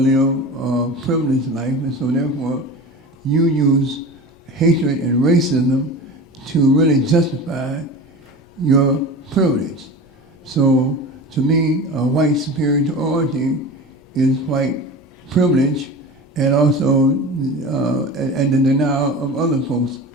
a privileged life, and so therefore you use hatred and racism to really justify your privilege. So to me, white superiority is white privilege, and also and the denial of other folks'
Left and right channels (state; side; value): normal; both; correlation 0.33